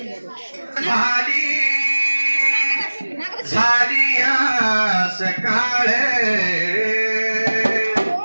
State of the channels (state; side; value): inverted; both; correlation -1.00